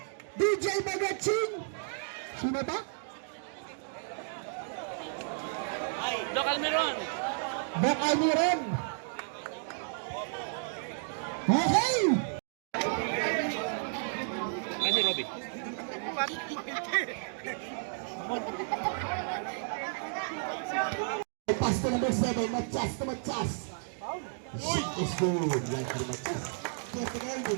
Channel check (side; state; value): left; silent; digital silence